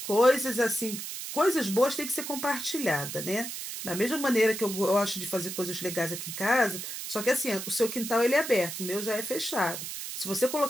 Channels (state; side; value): noise; right; hiss, 7 dB below the sound